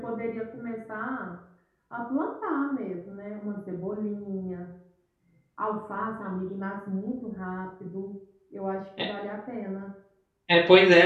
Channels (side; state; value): both; identical; correlation 1.00